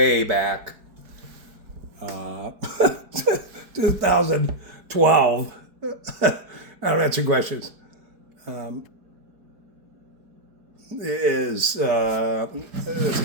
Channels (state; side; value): late; left; 4.7 ms